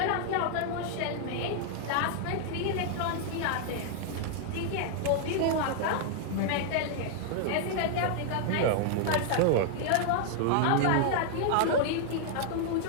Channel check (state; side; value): different; both; correlation 0.00